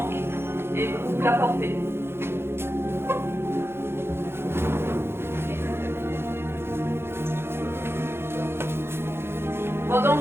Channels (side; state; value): left; late; 0.12 ms